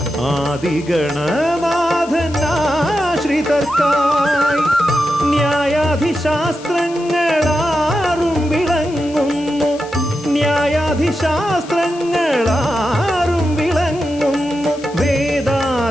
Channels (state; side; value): noise; left; hiss, 20 dB below the sound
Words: ആദിഗണനാഥനാശ്രിതർക്കായി. ന്യായാധിശാസ്ത്രങ്ങളാറും വിളങ്ങുന്നു, ന്യായാധിശാസ്ത്രങ്ങളാറും വിളങ്ങുന്നു